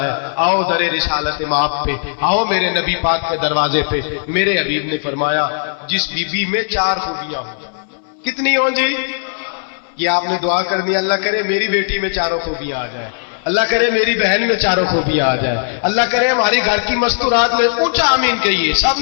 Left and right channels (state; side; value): silent; right; digital silence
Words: ہے۔ آؤ در رسالت ماپ پہ، آؤ میرے نبی پاک کے دروازے پہ۔ میرے حبیب نے فرمایا جس بی بی میں 4 خوبیاں ہوں، کتنی ہوں جی؟ یہ آپ نے دعا کرنی، اللہ کرے میری بیٹی میں 4 خوبیاں آ جائیں، اللہ کرے میری بہن میں 4 خوبیاں آ جائیں، اللہ کرے ہماری گھر کی مستورات میں، اونچا آمین کہیے، سب